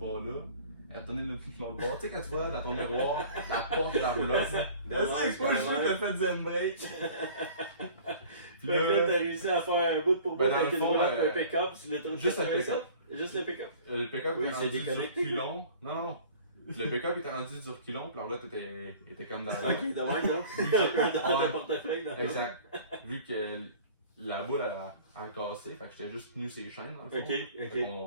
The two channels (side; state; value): both; inverted; correlation -0.46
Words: Elle a tourné l'autre bord. Tu sais, quand tu vois dans ton miroir la porte de la roulotte. C'est pas le jeu que t'as fait zen break. Puis Fait que là, t'as réussi à faire un bout pour bout Ben, dans avec le une fond, roulotte et un pick-up sur l'autoroute juste un 87. pick-up. Juste le pick-up. Le pick-up Oui, était c'est rendu du déconnecté. reculon. Non. Le pick-up était rendu du reculon, puis la roulotte était comme dans la. Ok, de même, donc. Dans le portefeuille. dans le- Exact. Vu que la boule a cassé, fait que j'étais juste tenu ses chaînes dans le fond. Ok, Fait ok.